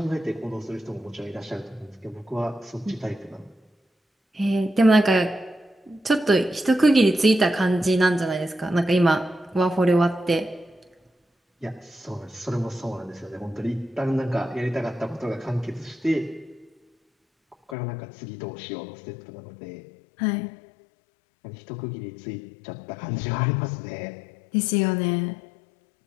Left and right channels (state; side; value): drops out; right; at 17.8 s